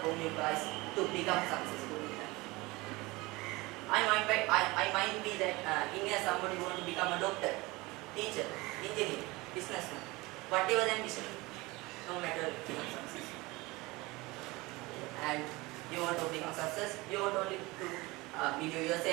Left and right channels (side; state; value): left; quieter; 22.5 dB